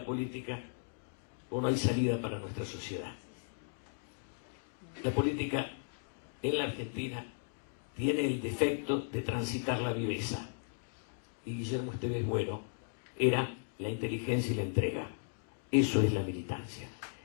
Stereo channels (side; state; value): right; silent; digital silence